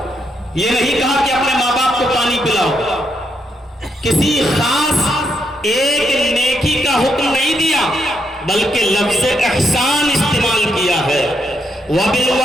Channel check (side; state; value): both; normal; correlation 0.79